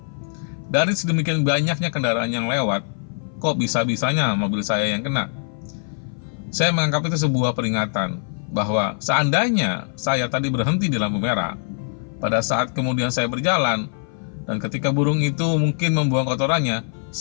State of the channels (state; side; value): silent; right; 58 dB below the other